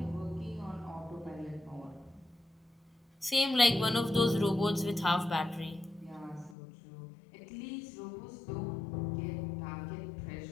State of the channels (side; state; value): right; drops out; at 6.6 s